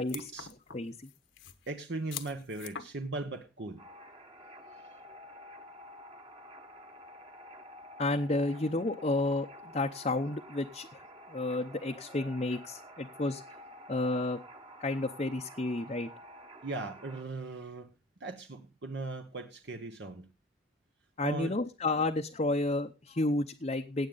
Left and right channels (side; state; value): both; normal; correlation 0.46